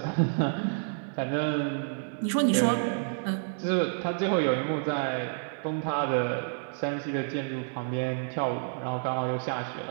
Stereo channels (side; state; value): left; silent; digital silence